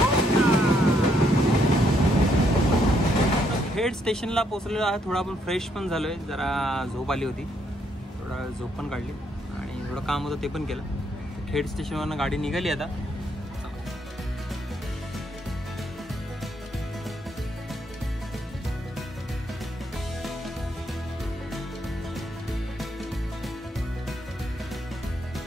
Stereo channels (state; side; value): normal; both; correlation 0.73